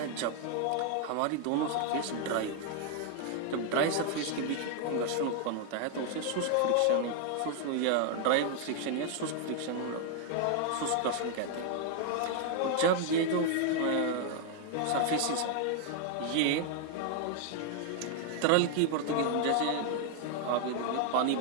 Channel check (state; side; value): different; both; correlation 0.00